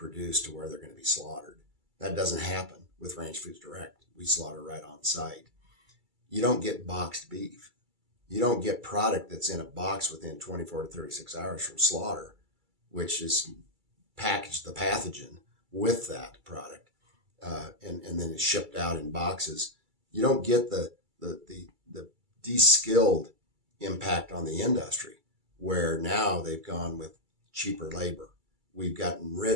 to where they're going to be slaughtered. That doesn't happen with Ranch Foods Direct. We slaughter right on site. You don't get boxed beef. You don't get product that's in a box within 24 to 36 hours from slaughter, which is packaged the pathogen with that product, and then it's shipped out in boxes. You don't get the de-skilled impact on the industry, where now they've gone with cheaper labor. We've gotten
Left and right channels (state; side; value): late; left; 2.3 ms